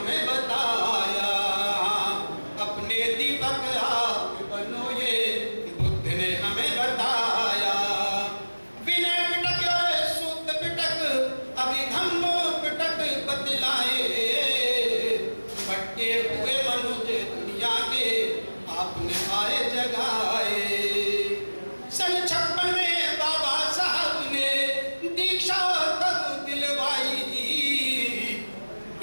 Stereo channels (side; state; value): both; inverted; correlation -1.00